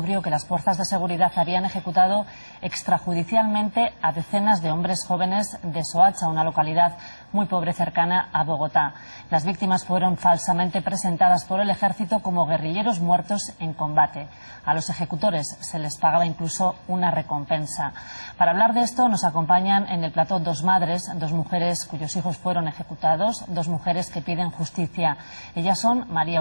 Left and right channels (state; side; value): inverted; both; correlation -1.00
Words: que las fuerzas de seguridad habían ejecutado extrajudicialmente a decenas de hombres jóvenes de Soacha, una localidad muy pobre cercana a Bogotá. Las víctimas fueron falsamente presentadas por el ejército como guerrilleros muertos en combate. A los ejecutores se les pagaba incluso una recompensa. Para hablar de esto nos acompañan en el plató dos madres, dos mujeres cuyos hijos fueron ejecutados, dos mujeres que piden justicia. Ellas son María